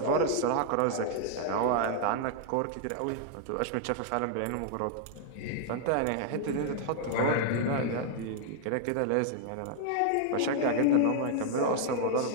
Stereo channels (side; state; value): both; different; correlation 0.00